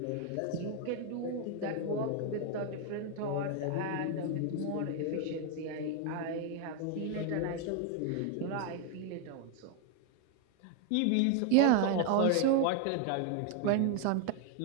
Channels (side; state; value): both; different; correlation 0.01